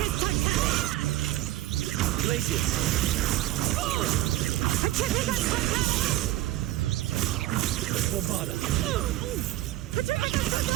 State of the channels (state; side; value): quieter; left; 15.8 dB